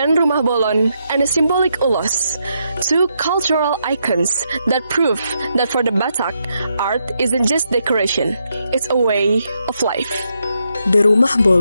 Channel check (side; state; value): both; inverted; correlation -0.80